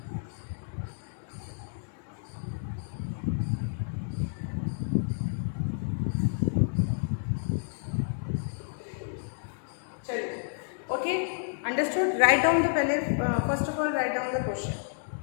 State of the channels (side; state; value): right; silent; digital silence